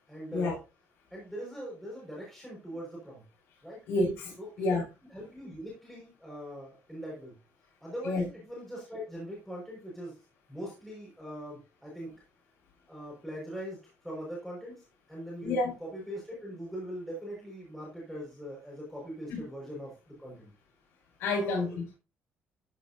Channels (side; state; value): both; normal; correlation 0.65